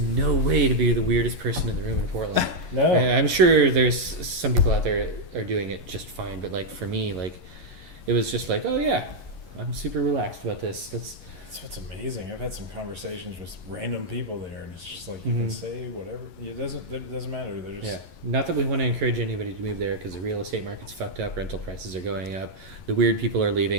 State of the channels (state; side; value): late; left; 11 ms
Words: way to be the weirdest person in the room in Portland. No, I'm sure there's some people out there are doing it just fine, but like for me, like it was just like, oh yeah, I'm super relaxed about this. That's what's amazing. I've had some conversations with random people there, and it's just like you can say whatever. It doesn't matter. They're just Not that we want to encourage anybody to move there, because the real estate market's fucked up. Rental prices are going up. The weird people are